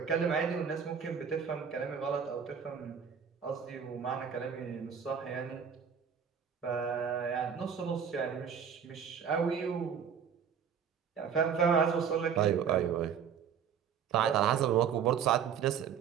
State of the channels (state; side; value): quieter; left; 7.4 dB